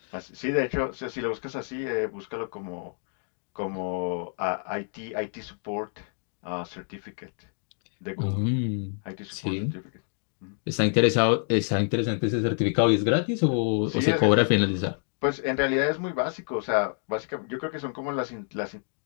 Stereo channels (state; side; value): silent; right; 55 dB below the other